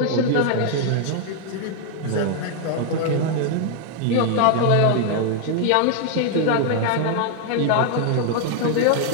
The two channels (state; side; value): different; both; correlation 0.00